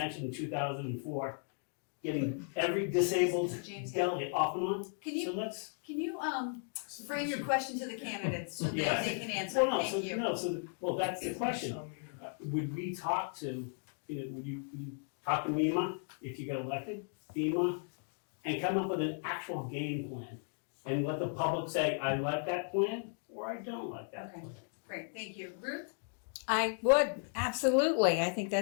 in 2004, getting every disabled James, delegate off and on. Can you So let's. frame your question to the candidates so that Yeah. they can answer? Thank you. Well, that's the question. Would we talk to, would you talk to MEMA if you got elected, FEMA, and come up with an actual game plan? And let the public say, I like that plan, or I don't like that Okay. plan. Great, thank you. Ruth? I would, absolutely. I think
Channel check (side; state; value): right; silent; 54 dB below the other